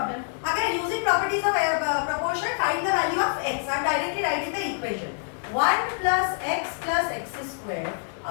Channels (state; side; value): silent; right; digital silence